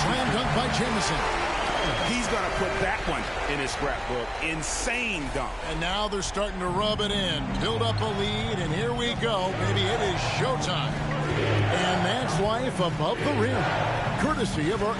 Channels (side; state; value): both; identical; correlation 1.00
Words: slam dunk by Jamison. He's going to put that one in his scrapbook. Insane dunk. And now they're starting to rub it in. Build up a lead, and here we go. Maybe it is showtime. And that's life above the rim. Courtesy of our